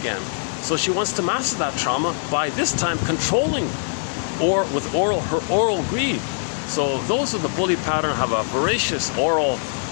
So she wants to master that trauma by this time controlling, or with her oral greed. So those of the bully pattern have a voracious oral,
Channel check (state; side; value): silent; right; digital silence